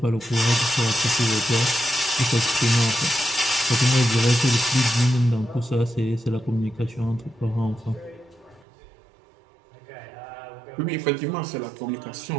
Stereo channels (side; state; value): left; drops out; at 8.7 s